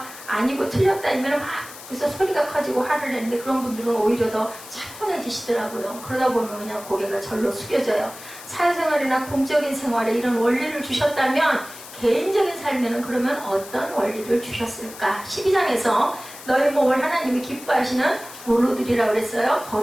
아니고 틀렸다 이면 막 그래서 소리가 커지고 화를 내는데, 그런 분들은 오히려 더 차분해지시더라고요. 그러다 보면 그냥 고개가 절로 숙여져요. 사회생활이나 공적인 생활에 이런 원리를 주셨다면 개인적인 삶에는 그러면 어떤 원리를 주셨을까? 12장에서 너희 몸을 하나님이 기뻐하시는 뭘로 드리라 그랬어요?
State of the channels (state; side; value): noise; left; hiss, 16 dB below the sound